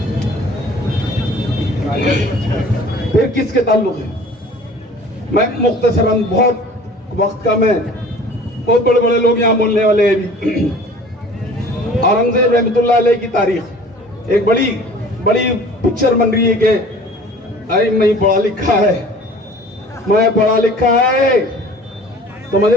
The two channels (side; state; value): both; normal; correlation 0.47